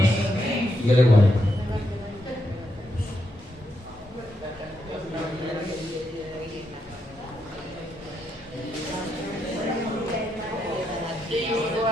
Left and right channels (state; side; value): normal; both; correlation 0.81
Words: Y Dios le guarde.